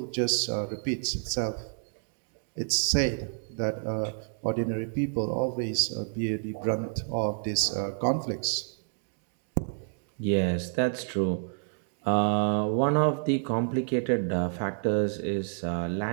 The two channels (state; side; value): silent; left; digital silence